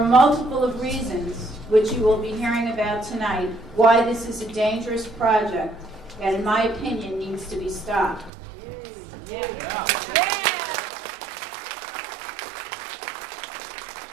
multiple of reasons, which you will be hearing about tonight, why this is a dangerous project that, in my opinion, needs to be stopped.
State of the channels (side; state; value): left; drops out; at 8.3 s